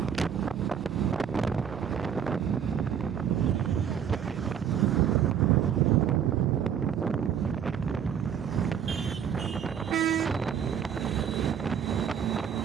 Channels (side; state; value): left; quieter; 8.3 dB